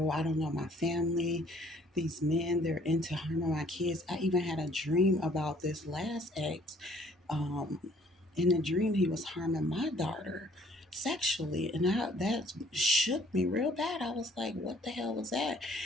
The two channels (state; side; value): normal; both; correlation 0.59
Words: I don't know, my family, these men, they're into harming my kids. I even had a dream about this last ex. Um, in the dream, he was harming my daughter sexually, and that shook me real bad. I was like, what the hell was that?